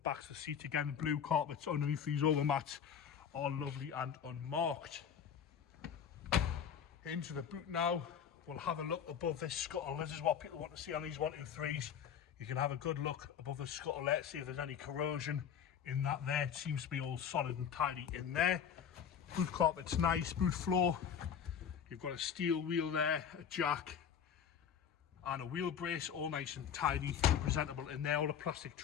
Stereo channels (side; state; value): right; quieter; 8.1 dB